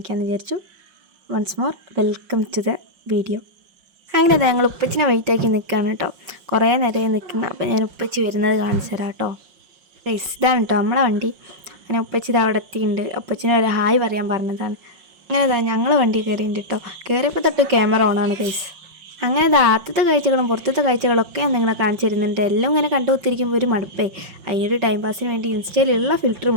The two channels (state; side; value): late; left; 5.6 ms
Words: വിചാരിച്ചു. Once more welcome to the video. അങ്ങനെ ഞങ്ങൾ ഉപ്പച്ചിനെ വെയിറ്റാക്കി നിൽക്കുകയാണ് കേട്ടോ. കുറേ നേരമായി നിൽക്കുന്നത്. അപ്പോൾ ഞാൻ ഉപ്പച്ചി വരുന്നത് കാണിച്ചു തരാം കേട്ടോ. ഇതാണ് കേട്ടോ നമ്മളെ വണ്ടി. അങ്ങനെ ഉപ്പച്ചി ഇത് അവിടെ എത്തിയിട്ടുണ്ട്. ഉപ്പച്ചിനെ ഒരു ഹായ് പറയാൻ പറഞ്ഞതാണ്. അങ്ങനെ ഞങ്ങൾ വണ്ടി കയറിയിട്ടുണ്ട് കേട്ടോ. കയറിയപ്പോൾ തൊട്ട് ക്യാമറ ഓണാണ് ഗൈസ്. അങ്ങനെ ആദ്യത്തെ കാഴ്ചകളും പുറത്തത്തെ കാഴ്ചകളൊക്കെ ഞാൻ നിങ്ങളെ കാണിച്ചു തരുന്നുണ്ട്. എല്ലാം ഇങ്ങനെ കണ്ടുകൊത്തിരിക്കുമ്പോൾ ഒരു മടുപ്പേ. അതിനൊരു ടൈം പാസിന് വേണ്ടി ഇൻസ്റ്റയിലുള്ള ഫിൽറ്റർ